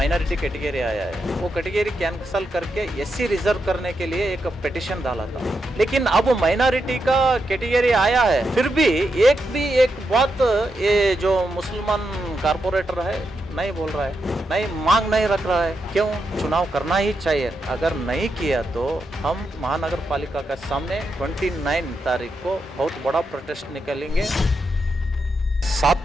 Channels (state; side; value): normal; both; correlation 0.85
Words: कैटेगरी आया है वो कैटेगरी कैंसल करके एससी रिजर्व करने के लिए एक पिटिशन डाला था। लेकिन अब माइनॉरिटी का कैटेगरी आया है फिर भी एक बात ये जो मुसलमान कारपोरेटर है नहीं बोल रहा है, नहीं मांग नहीं रख रहा है। क्यों? चुनाव करना ही चाहिए। अगर नहीं किया तो हम महानगर पालिका के सामने 29 तारीख को बहुत बड़ा प्रोटेस्ट निकालेंगे। 7